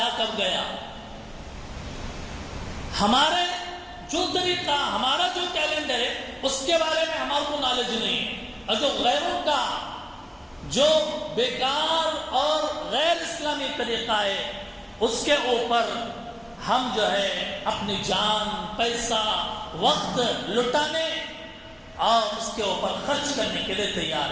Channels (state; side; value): identical; both; correlation 1.00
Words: کب گیا. ہمارے جو طریقہ، ہمارا جو کیلنڈر ہے اس کے بارے میں ہمارے کو نالج نہیں ہے. اور جو غیروں کا جو بیکار اور غیر اسلامی طریقہ ہے اس کے اوپر ہم جو ہے اپنی جان، پیسہ، وقت لٹانے اور اس کے اوپر خرچ کرنے کے لیے تیار